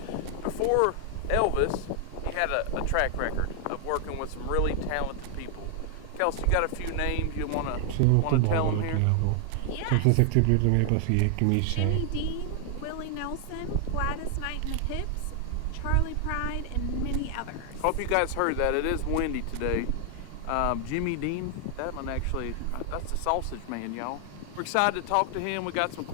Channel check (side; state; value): both; different; correlation 0.00